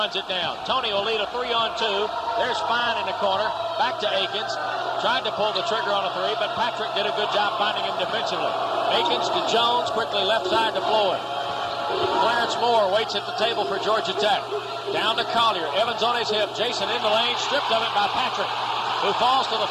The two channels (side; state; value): both; identical; correlation 1.00